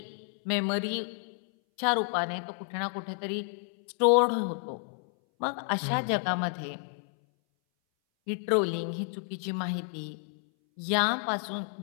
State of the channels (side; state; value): right; silent; 58 dB below the other